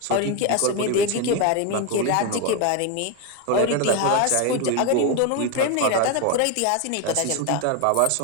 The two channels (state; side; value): different; both; correlation 0.02